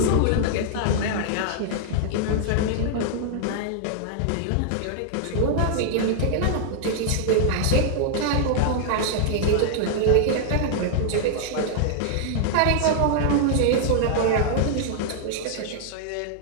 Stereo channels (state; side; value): different; both; correlation 0.00